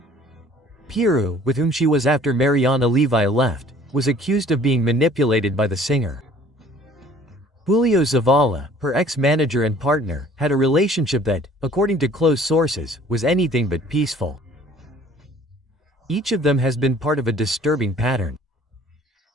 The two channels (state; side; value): normal; both; correlation 0.53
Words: Piru, with whom she was after Mariana Levi left, was accused of being manipulated by the singer. Julio Zavala, her ex-manager and partner, had a relationship that, according to close sources, was anything but peaceful. Each of them has been part of a disturbing pattern.